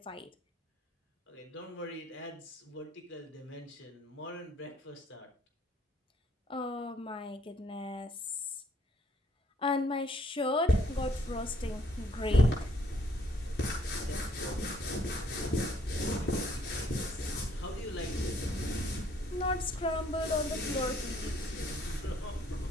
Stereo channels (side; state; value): both; normal; correlation 0.65